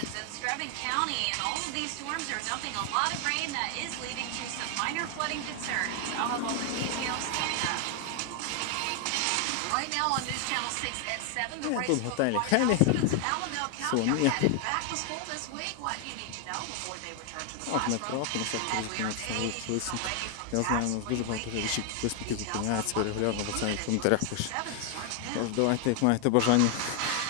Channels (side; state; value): both; different; correlation 0.00